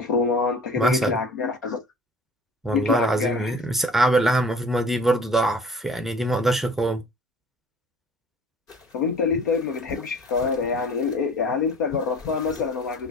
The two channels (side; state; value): both; normal; correlation 0.46